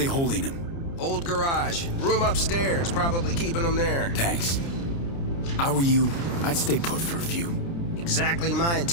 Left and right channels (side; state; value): right; late; 29 ms